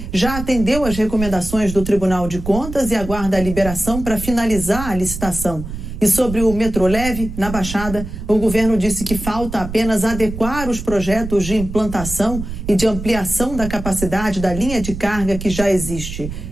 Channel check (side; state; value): right; noise; rumble, 8 dB below the sound